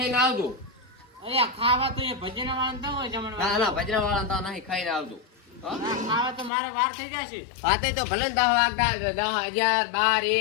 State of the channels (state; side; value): drops out; right; at 6.5 s